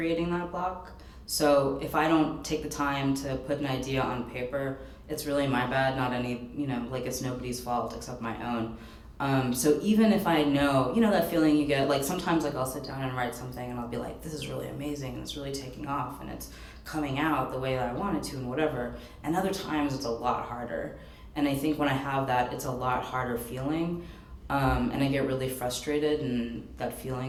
that block. So if I don't take the time to put an idea on paper, it's really my bad, not any, it's nobody's fault except my own. So even if I know, that feeling you get, sometimes I'll sit down and write something and I'll be like, this is really amazing and it's really taking off and it's coming out the way that I wanted to and whatever. And other times it's a lot harder. And I think when I have that, it's a lot harder feeling. And I get really frustrated and that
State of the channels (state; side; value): identical; both; correlation 1.00